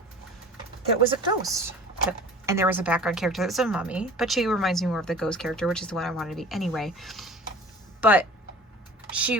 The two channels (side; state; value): both; normal; correlation 0.43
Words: that was a ghost. And there was a background character that was a mummy, but she reminds me more of the ghost character, which is the one I wanted to be anyway. But